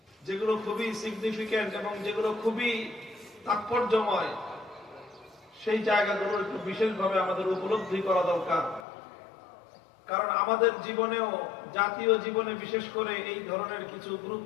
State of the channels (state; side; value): drops out; right; at 8.8 s